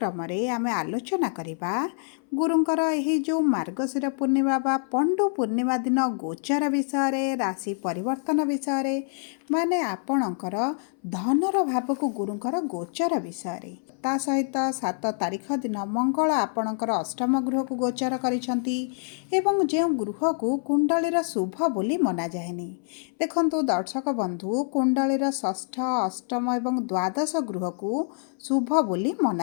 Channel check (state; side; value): silent; right; 61 dB below the other